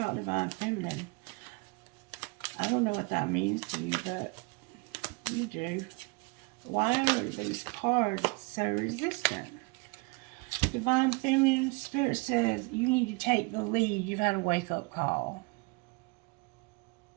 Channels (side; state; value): left; quieter; 28.0 dB